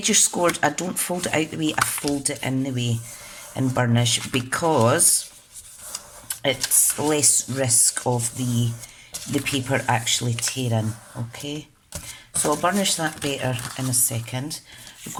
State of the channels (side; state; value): both; identical; correlation 1.00